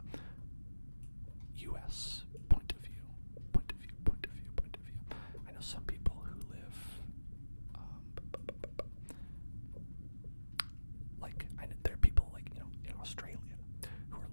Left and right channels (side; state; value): both; inverted; correlation -1.00